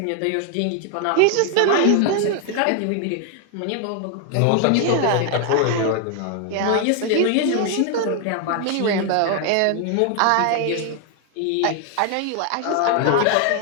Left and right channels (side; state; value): both; different; correlation 0.00